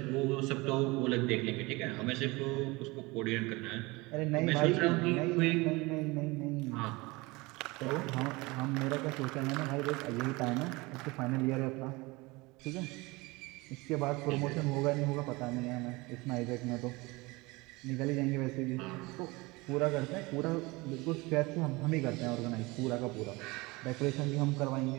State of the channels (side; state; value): left; quieter; 23.7 dB